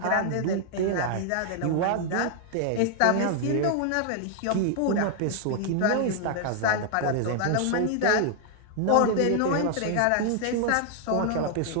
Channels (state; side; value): different; both; correlation 0.00